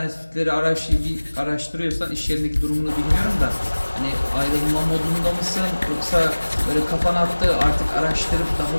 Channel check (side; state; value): both; inverted; correlation -1.00